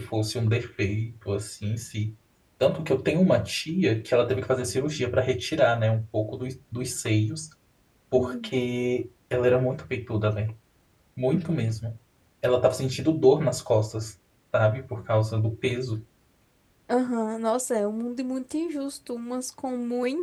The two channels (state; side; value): identical; both; correlation 1.00